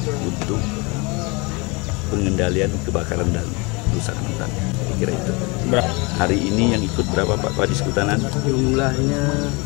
untuk pengendalian kebakaran dan kerusakan hutan. Kira itu. Hari ini yang ikut berapa Pak Kadis Kehutanan? Jumlahnya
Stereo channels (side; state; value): right; quieter; 27.9 dB